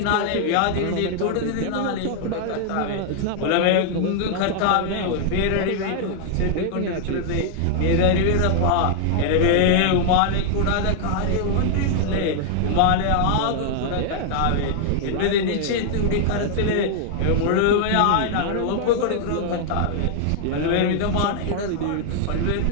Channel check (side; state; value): both; different; correlation 0.00